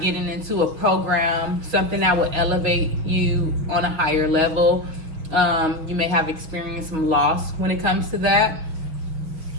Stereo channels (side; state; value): left; late; 6.3 ms